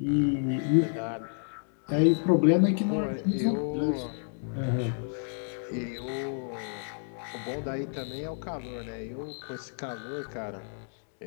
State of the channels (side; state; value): right; silent; digital silence